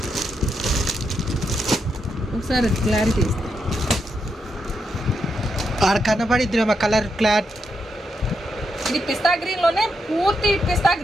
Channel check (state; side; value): normal; both; correlation 0.82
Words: ఒకసారి క్లారిటీ ఇస్తాను. ఆడ కనబడిద్ది కలర్ క్లాత్. ఇది పిస్తా గ్రీన్ లోనే పూర్తి పిస్తా